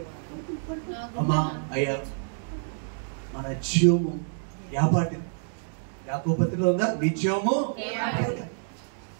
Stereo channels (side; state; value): left; silent; digital silence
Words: అమ్మా? అయ్యా మన జీవము యాపాటి యాకోపత్రిలో ఉందా? నీ జీవము